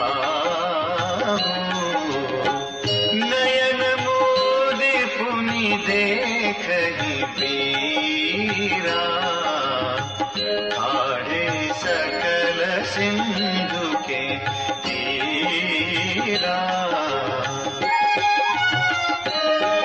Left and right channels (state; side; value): identical; both; correlation 1.00